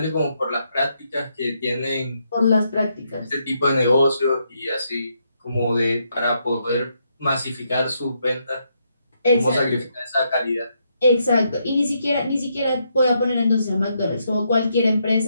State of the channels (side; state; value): both; inverted; correlation -0.78